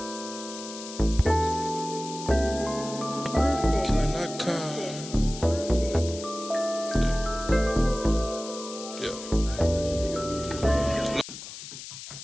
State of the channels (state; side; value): noise; left; hiss, 12 dB below the sound